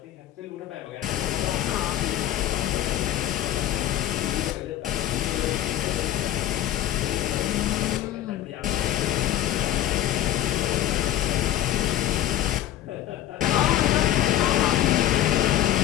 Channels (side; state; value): right; quieter; 12.7 dB